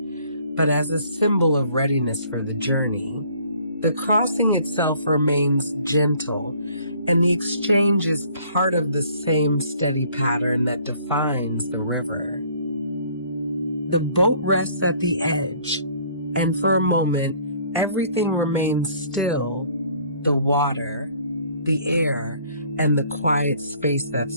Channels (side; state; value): both; inverted; correlation -0.58